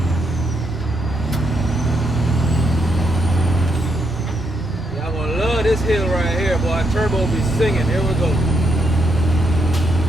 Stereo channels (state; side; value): normal; both; correlation 0.78